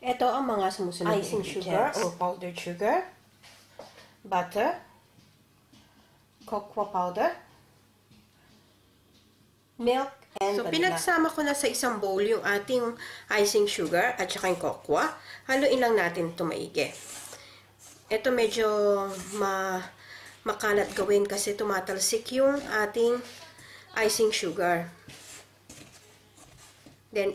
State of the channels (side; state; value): both; identical; correlation 1.00